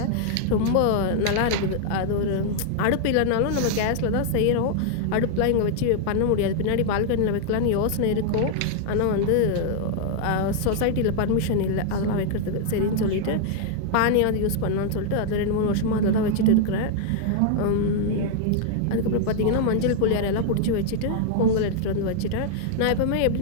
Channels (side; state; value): both; different; correlation -0.01